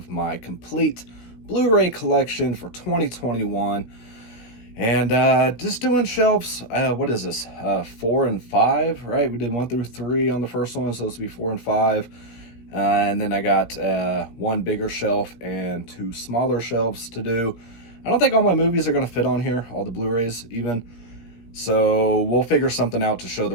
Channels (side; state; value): right; late; 17 ms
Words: my complete Blu-ray collection for 2021. And just doing shelves, what is this, 4 and 5, right? We did 1 through 3 on the first one, so this will be 4 and 5. And then I got one bigger shelf and 2 smaller shelves to do. I don't think all my movies are going to fit on here, all the Blu-rays even. So we'll figure something out to show